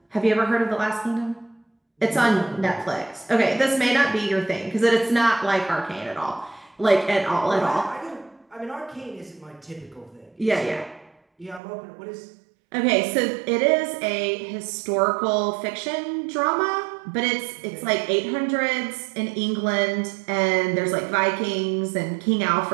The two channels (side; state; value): left; drops out; at 11.6 s